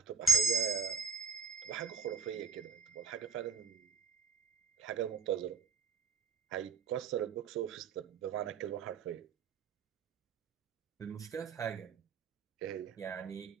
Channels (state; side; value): quieter; left; 5.6 dB